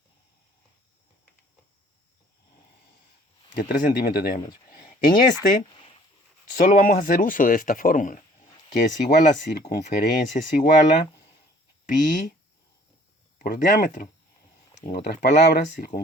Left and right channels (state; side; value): normal; both; correlation 0.54